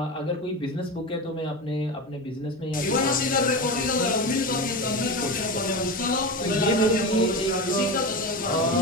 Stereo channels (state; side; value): normal; both; correlation 0.23